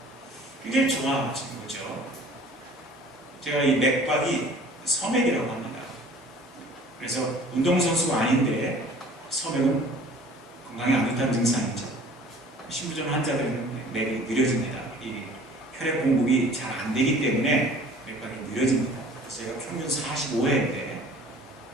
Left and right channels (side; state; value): both; normal; correlation 0.49